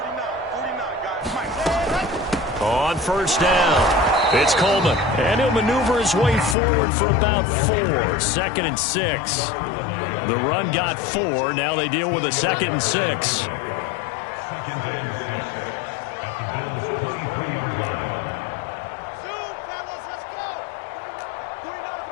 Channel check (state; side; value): drops out; right; at 6.6 s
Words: guys. Mike. On first down, it's Coleman. And he'll maneuver his way forward for about 4. 2nd and 6. The run got 4. Now they deal with a 2nd and 6. 2nd and 6 at the Bills' 23-yard line. Zoom, fellas, let's go. 49's